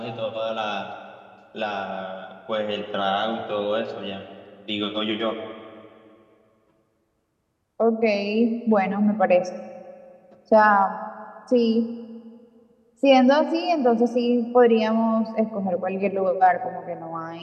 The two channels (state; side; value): identical; both; correlation 1.00